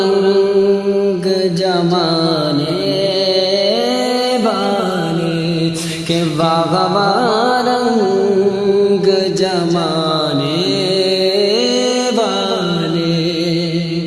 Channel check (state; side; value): identical; both; correlation 1.00